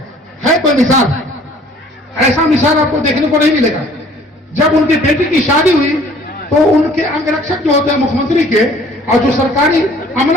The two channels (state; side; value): normal; both; correlation 0.54